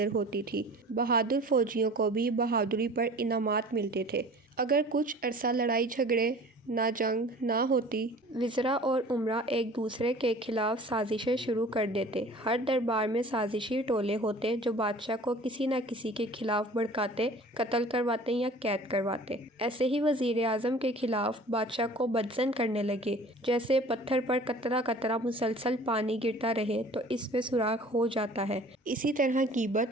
होती थी। बहादुर फौजियों को भी बहादुरी पर इनामात मिलते थे। अगर कुछ अरसा लड़ाई झगड़े ना जंग ना होती, वज़रा और उमरा एक दूसरे के खिलाफ साजिशें शुरू कर देते। हर दरबार में साजिशी टोले होते जो बादशाह को किसी न किसी के खिलाफ भड़काते, कत्ल करवाते या कैद करवाते। ऐसे ही वज़ीर आज़म के खिलाफ बादशाह को बदज़न करने लगे। जैसे पत्थर पर कतरा कतरा मुसलसल पानी गिरता रहे तो इसमें सुराख हो जाता है। इसी तरह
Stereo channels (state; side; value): normal; both; correlation 0.45